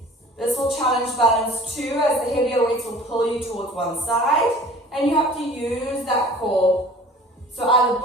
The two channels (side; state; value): both; normal; correlation 0.46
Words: This will challenge balance too, as the heavier weights will pull you towards one side, and you have to use that core. So either